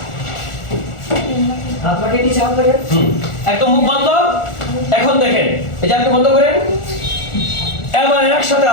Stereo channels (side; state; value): right; late; 1.4 ms